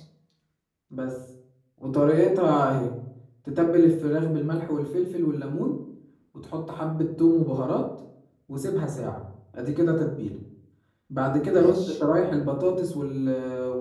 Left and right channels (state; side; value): identical; both; correlation 1.00